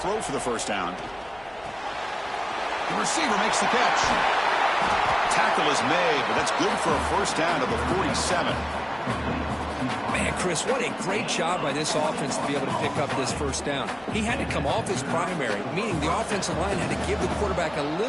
for the first down. The receiver makes the catch. Tackle is made, but that's good for a first down to the 47. Man, Chris, what a great job by this offense to be able to pick up this first down. He had to come off his primary, meaning the offensive line had to give the quarterback a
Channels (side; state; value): left; noise; hum, 26 dB below the sound